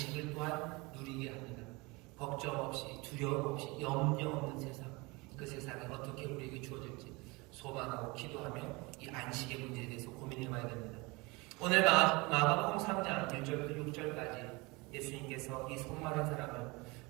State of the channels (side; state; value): left; quieter; 25.2 dB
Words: 또한 누리게 합니다. 걱정 없이, 두려움 없이, 염려 없는 세상, 그 세상이 어떻게 우리에게 주어질지 소망하고 기도하며 이 안식의 문제에 대해서 고민해봐야 됩니다. 오늘 마가복음 3장 1절부터 6절까지 예수님께서 이 손마른 사람을